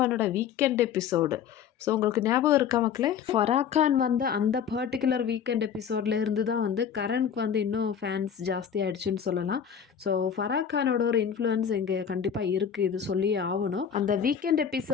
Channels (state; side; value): quieter; right; 8.0 dB